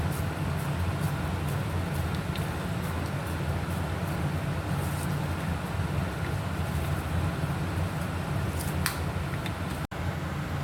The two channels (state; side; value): identical; both; correlation 1.00